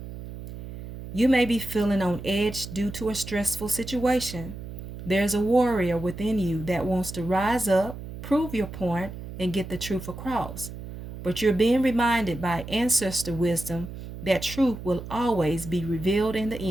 You may be feeling on edge due to a stressful situation. There's a warrior within you that wants to rise up, prove your point, and get the truth across. But you're being reminded by ancestor wisdom that truth will always be revealed in the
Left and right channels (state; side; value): noise; right; hum, 11 dB below the sound